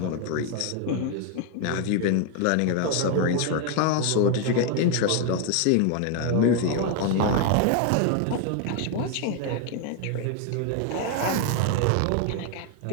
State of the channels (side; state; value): both; different; correlation 0.01